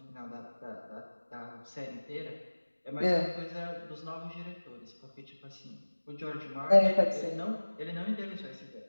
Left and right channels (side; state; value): both; inverted; correlation -1.00